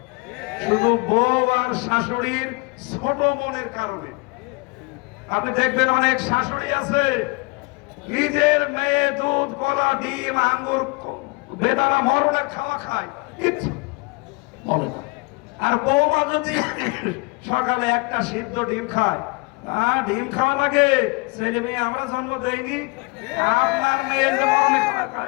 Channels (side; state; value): right; quieter; 29.0 dB